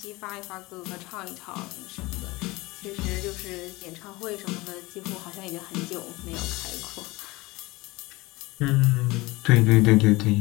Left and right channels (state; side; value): quieter; right; 21.7 dB